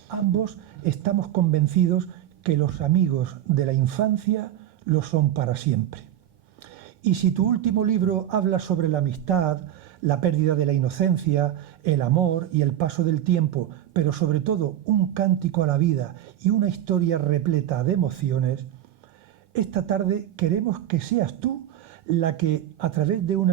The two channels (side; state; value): left; quieter; 11.4 dB